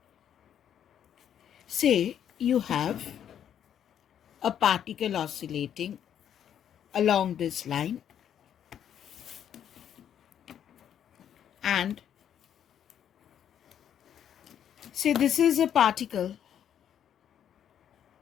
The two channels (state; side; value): quieter; right; 9.5 dB